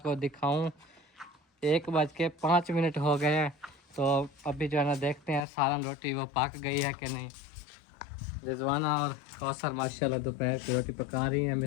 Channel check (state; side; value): drops out; right; at 5.4 s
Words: दिखाऊँ 1:05 हो गए हैं। तो अभी जो है ना देखते हैं सालन रोटी वो पक गई है कि नहीं। रिजवाना और कौसर माशाल्लाह दोपहर की रोटी पका रही हैं